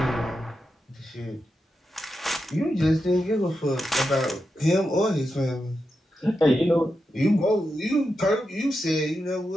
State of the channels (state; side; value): normal; both; correlation 0.88